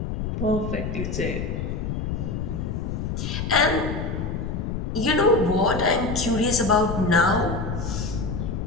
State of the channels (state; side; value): noise; left; rumble, 3 dB below the sound